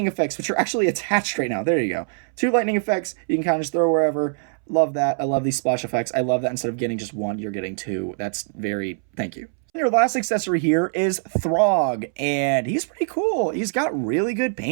effects, which are actually attached right now. There you go. 2 lightning effects. You can kind of just throw wherever. Love that. I love these splash effects. I love that instead of getting just 1, you're getting 2. That's very, thank you. Your last accessory here is Throg, and he's pretty cool. He's got really good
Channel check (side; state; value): left; silent; 63 dB below the other